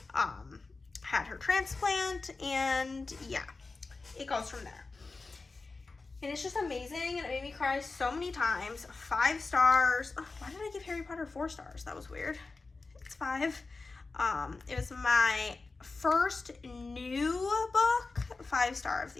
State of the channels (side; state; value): right; quieter; 3.8 dB